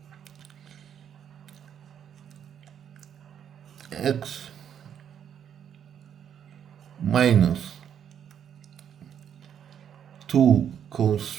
x minus 2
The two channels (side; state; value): left; quieter; 8.8 dB